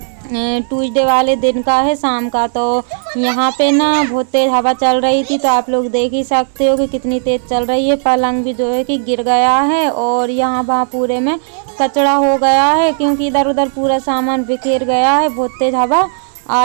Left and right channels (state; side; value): silent; left; digital silence